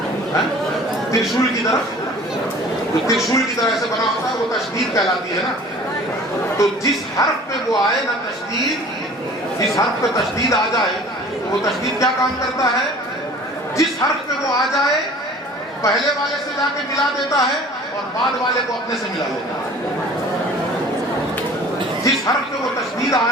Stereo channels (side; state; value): both; normal; correlation 0.46